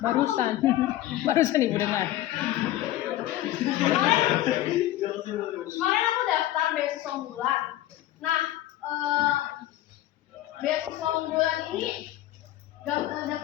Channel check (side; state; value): right; quieter; 14.4 dB